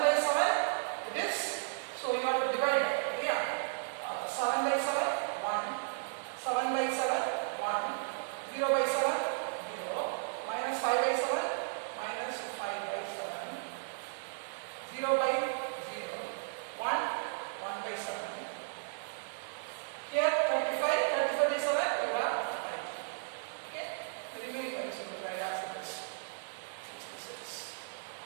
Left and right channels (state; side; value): silent; left; digital silence